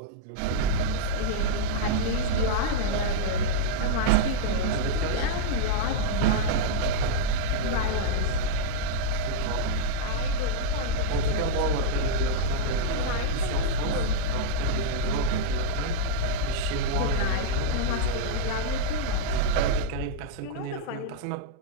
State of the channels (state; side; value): different; both; correlation -0.02